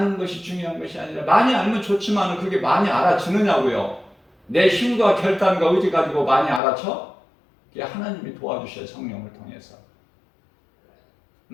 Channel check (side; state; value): right; drops out; at 6.6 s